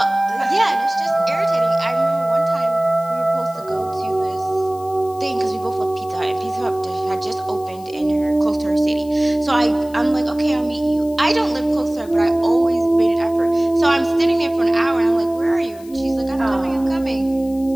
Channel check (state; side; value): noise; left; hiss, 24 dB below the sound